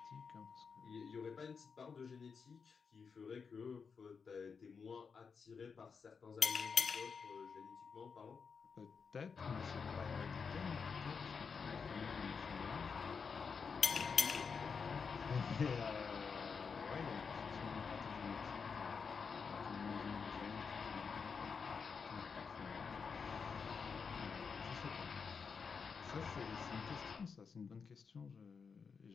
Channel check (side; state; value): right; quieter; 5.6 dB